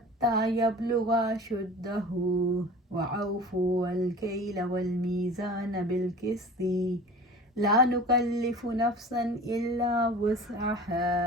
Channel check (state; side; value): normal; both; correlation 0.39